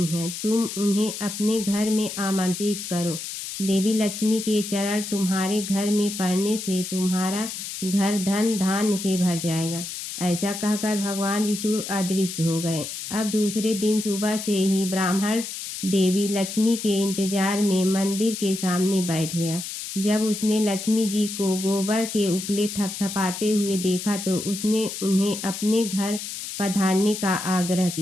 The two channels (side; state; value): left; noise; hiss, 7 dB below the sound